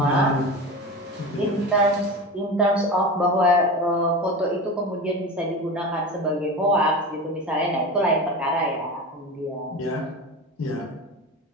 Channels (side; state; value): both; normal; correlation 0.28